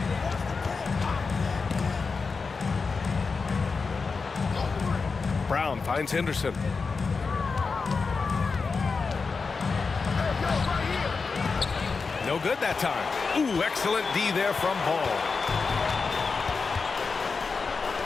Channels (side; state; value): right; quieter; 4.7 dB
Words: Brown finds Henderson. No good that time. Ooh, excellent D there from Ball.